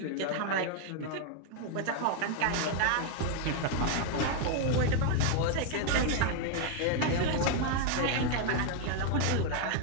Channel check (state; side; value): different; both; correlation 0.00